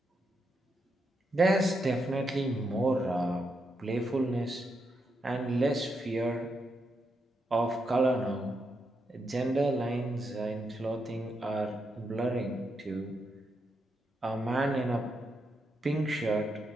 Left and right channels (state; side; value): normal; both; correlation 0.82